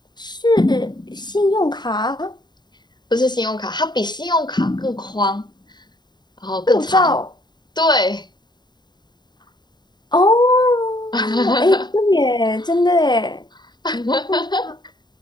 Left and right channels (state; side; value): late; right; 0.21 ms